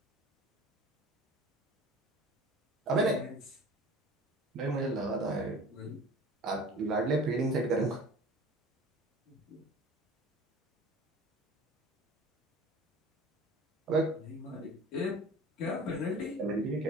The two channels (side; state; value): both; normal; correlation 0.42